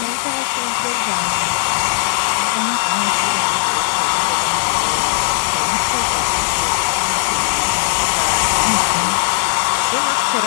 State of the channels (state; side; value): silent; right; digital silence